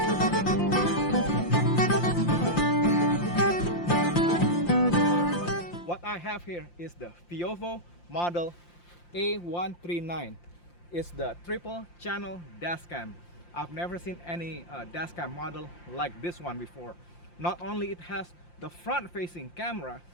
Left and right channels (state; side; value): late; right; 5.7 ms